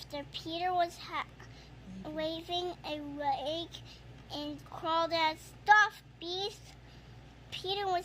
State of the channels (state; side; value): identical; both; correlation 1.00